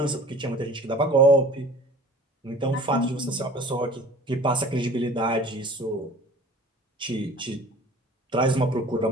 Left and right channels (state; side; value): normal; both; correlation 0.45